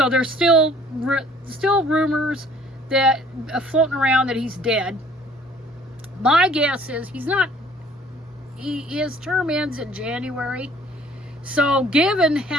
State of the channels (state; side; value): normal; both; correlation 0.55